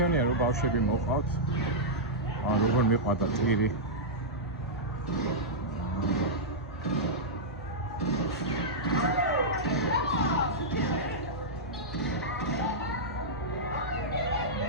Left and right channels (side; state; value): both; normal; correlation -0.11